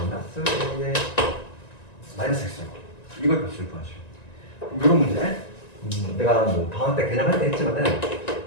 a의 마이너스 x제곱. 이걸 값을 구하죠. 이런 문제 내가 뭐 방학 때 개념할 때 했지만은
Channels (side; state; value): right; late; 1.9 ms